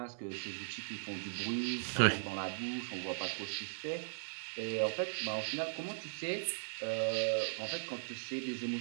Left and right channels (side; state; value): left; silent; digital silence